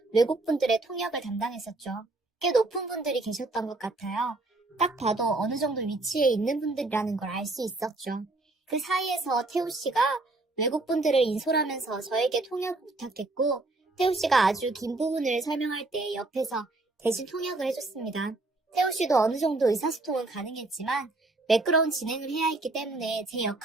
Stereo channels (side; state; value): left; quieter; 3.0 dB